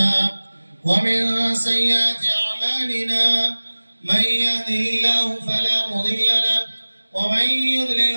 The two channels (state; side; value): inverted; both; correlation -1.00